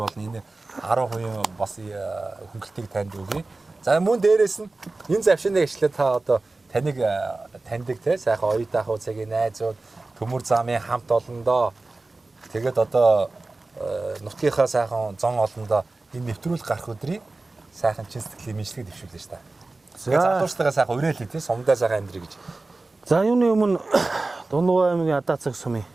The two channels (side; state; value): left; quieter; 3.3 dB